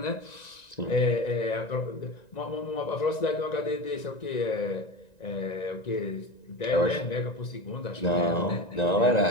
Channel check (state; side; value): late; right; 1.9 ms